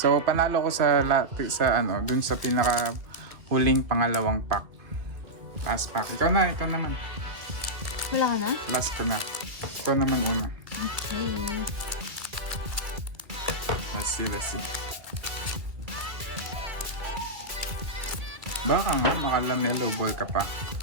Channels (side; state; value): left; late; 2.3 ms